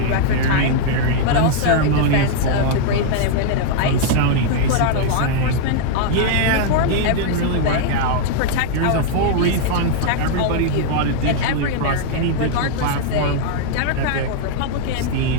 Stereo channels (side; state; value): both; different; correlation -0.01